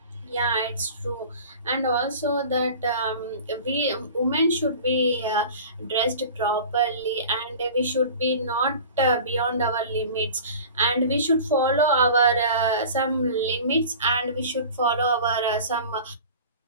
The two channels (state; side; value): inverted; both; correlation -0.40